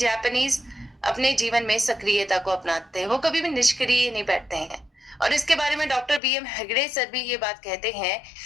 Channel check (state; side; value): drops out; right; at 6.2 s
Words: अपने जीवन में सक्रियता को अपनाते हैं, वो कभी भी निष्क्रिय नहीं बैठते हैं। और इसके बारे में डॉक्टर बीएम हेगड़े सर भी ये बात कहते हैं